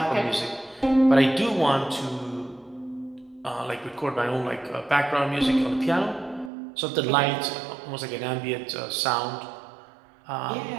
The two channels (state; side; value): drops out; left; at 6.5 s